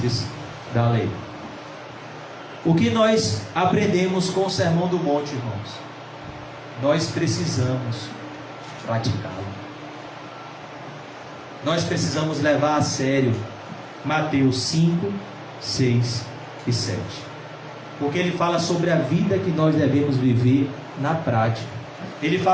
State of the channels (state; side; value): identical; both; correlation 1.00